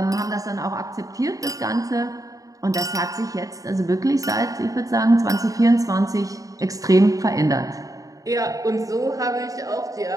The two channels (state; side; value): late; left; 0.17 ms